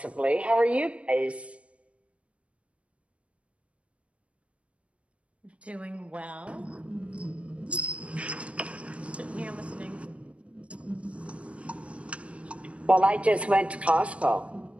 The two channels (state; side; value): late; left; 0.062 ms